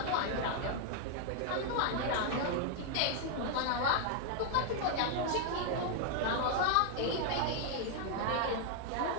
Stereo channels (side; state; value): both; different; correlation 0.00